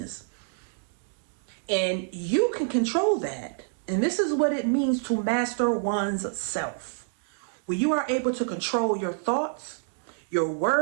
And you can control that. And this is what it means to master one's self. When you are able to control your thoughts, your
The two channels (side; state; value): left; silent; 60 dB below the other